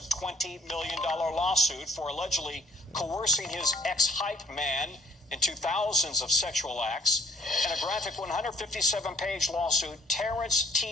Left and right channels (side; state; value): both; normal; correlation 0.59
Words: $20 million lawsuit for allegedly coercing his ex-hype man into thousands of sexual acts. In a graphic 157-page lawsuit, Terrence